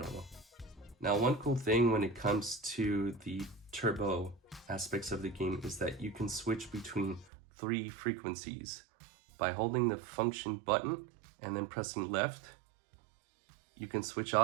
Now one cool thing when it comes to the turbo aspects of the game is that you can switch between 3 frequencies. By holding the function button and then pressing left, you can switch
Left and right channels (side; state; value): left; drops out; at 7.3 s